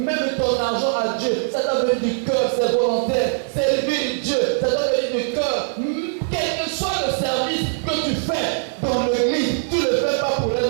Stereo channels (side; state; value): left; silent; 65 dB below the other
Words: ton argent à Dieu, ça doit venir du cœur, c'est volontaire. Servir Dieu, ça doit venir du cœur. Quel que soit le service que tu fais dans l'église, tu ne le fais pas pour un